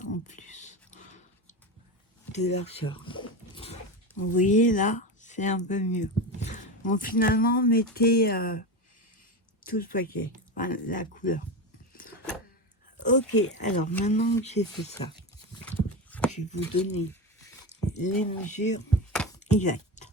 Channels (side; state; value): both; normal; correlation 0.20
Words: en plus de largeur. Vous voyez là, c'est un peu mieux. Bon, finalement, mettez tout le paquet, enfin, la couleur. Ok, alors maintenant que j'ai fait ça, je vais vous donner les mesures exactes.